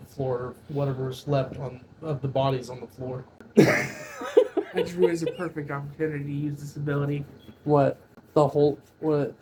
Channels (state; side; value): identical; both; correlation 1.00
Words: floor, whatever's left of the bodies on the floor. That drew is a perfect opportunity to use this ability. What? The whole, what?